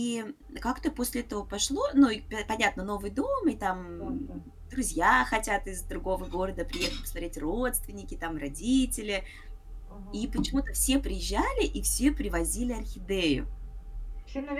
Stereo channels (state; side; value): identical; both; correlation 1.00